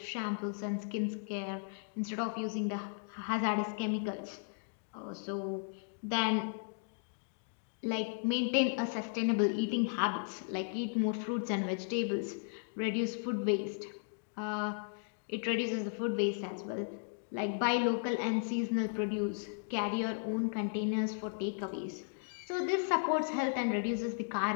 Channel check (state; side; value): silent; right; digital silence